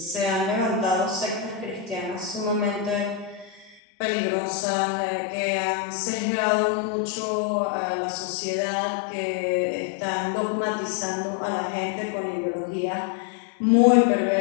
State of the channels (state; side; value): drops out; right; at 3.8 s